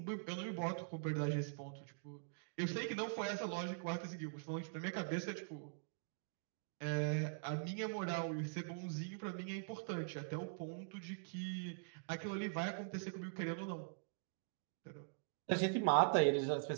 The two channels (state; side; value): silent; left; digital silence